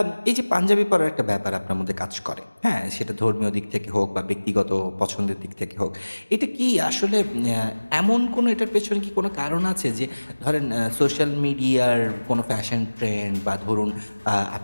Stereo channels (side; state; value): both; inverted; correlation -1.00